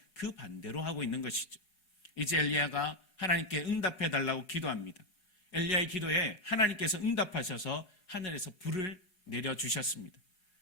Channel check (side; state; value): right; late; 4.8 ms